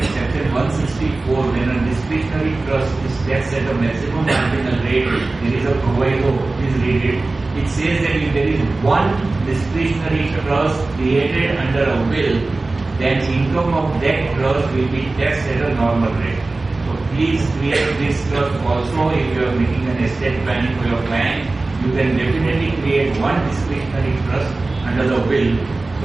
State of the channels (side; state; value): left; quieter; 3.3 dB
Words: Section 164, when a discretionary trust is taxed at a maximum marginal rate, there is a proviso, please read it. It says that if there is one discretionary trust created under a will, then income of that trust will be taxed at a normal rate. So please create this trust also. If you are making an estate planning for your client, you can definitely create one discretionary trust under the will so